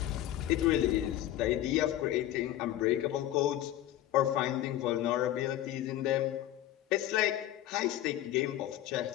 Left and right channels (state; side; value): quieter; right; 13.2 dB